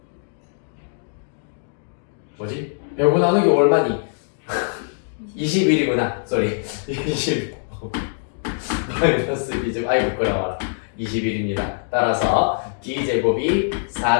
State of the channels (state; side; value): silent; right; digital silence